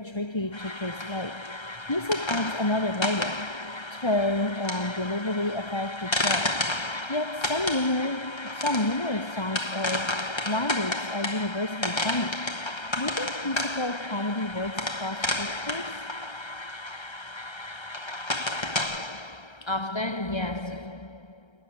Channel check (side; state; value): right; late; 1.3 ms